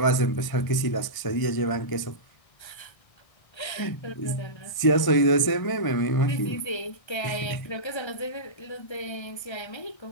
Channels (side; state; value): right; late; 1.0 ms